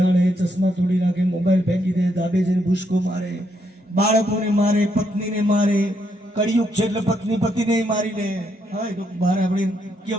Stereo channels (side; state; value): both; normal; correlation 0.76